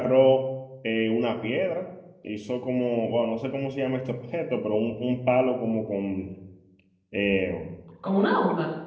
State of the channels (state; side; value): identical; both; correlation 1.00